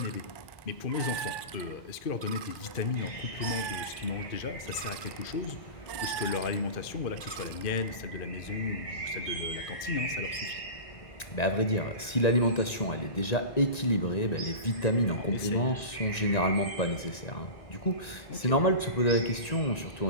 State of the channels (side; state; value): right; late; 1.9 ms